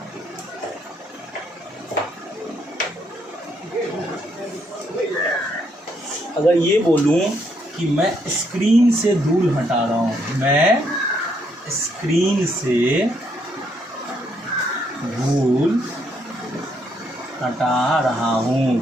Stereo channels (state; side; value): normal; both; correlation 0.73